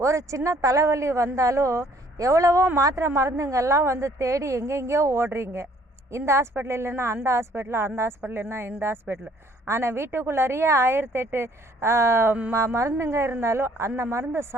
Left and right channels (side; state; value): both; normal; correlation 0.60